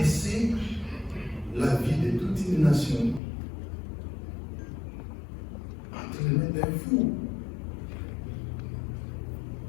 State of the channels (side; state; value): right; drops out; at 3.2 s